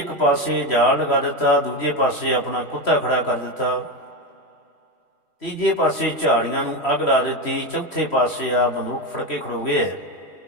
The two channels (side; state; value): right; late; 3.1 ms